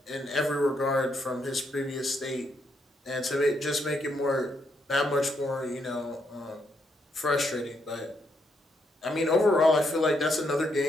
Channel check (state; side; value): normal; both; correlation 0.77